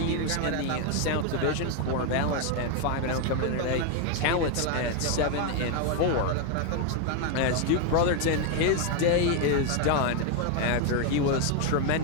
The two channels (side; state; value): both; different; correlation 0.01